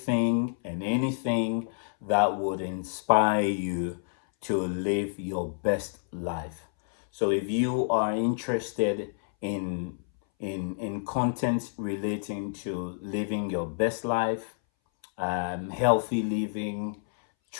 and anything that would inspire you to live your best life. So if you are interested in content relating to living your best life, healthy living,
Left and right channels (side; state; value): right; silent; 59 dB below the other